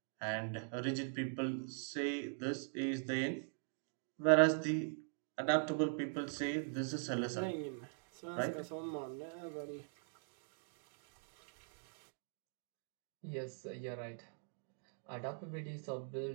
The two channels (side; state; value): left; silent; digital silence